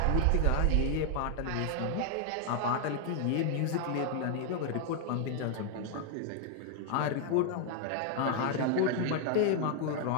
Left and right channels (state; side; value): different; both; correlation 0.00